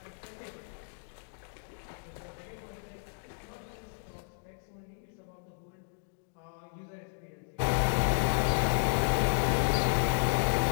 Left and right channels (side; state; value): right; silent; digital silence